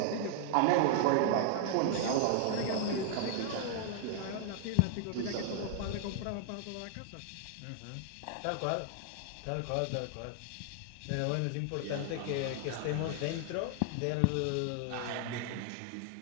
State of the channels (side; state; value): both; different; correlation 0.00